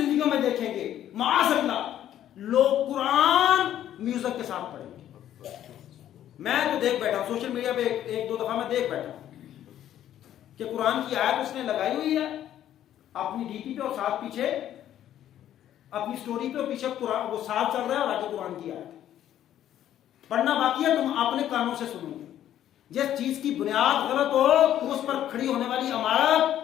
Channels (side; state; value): right; quieter; 11.5 dB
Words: میں دیکھیں گے معاذ اللہ لوگ قرآن میوزک کے ساتھ پڑھیں گے۔ میں تو دیکھ بیٹھا ہوں سوشل میڈیا پہ، ایک دو دفعہ میں دیکھ بیٹھا ہوں کہ قرآن کی آیت اس نے لگائی ہوئی ہے اپنی ڈی پی پہ، اور ساتھ پیچھے اپنی سٹوری پہ، اور پیچھے قرآن وہ ساتھ چل رہا ہے، اور آگے قرآن کی آیت پڑھنا باقی ہے، تم اپنے کانوں سے سنو گے۔ جس چیز کی بنیاد غلط ہو تو اس پر کھڑی ہونے والی عمارت